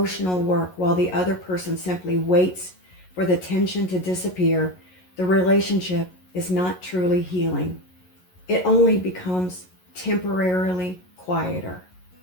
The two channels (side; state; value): right; late; 11 ms